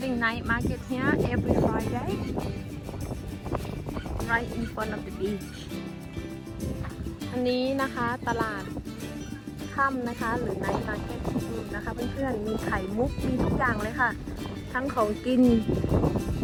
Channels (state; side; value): identical; both; correlation 1.00